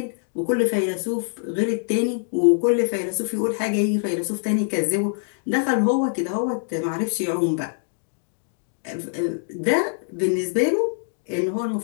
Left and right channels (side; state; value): right; silent; digital silence